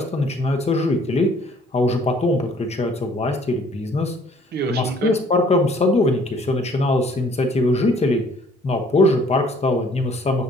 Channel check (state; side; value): normal; both; correlation 0.58